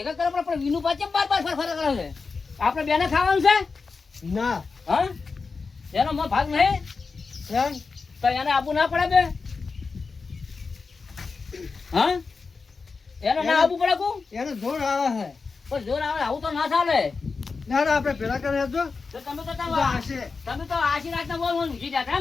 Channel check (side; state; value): right; quieter; 4.6 dB